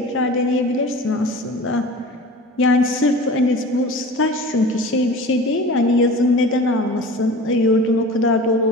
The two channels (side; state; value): both; normal; correlation 0.38